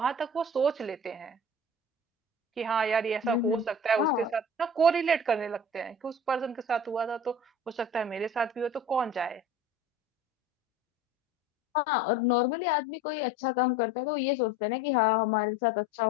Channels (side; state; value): both; normal; correlation 0.40